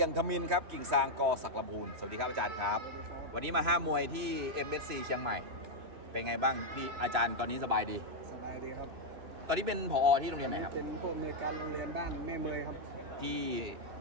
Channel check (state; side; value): late; left; 2.9 ms